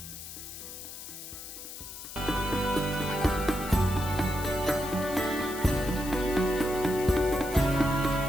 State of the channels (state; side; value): noise; left; hiss, 11 dB below the sound